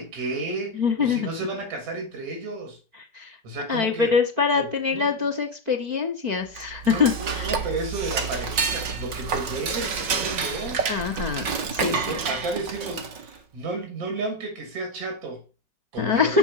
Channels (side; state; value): left; late; 5.4 ms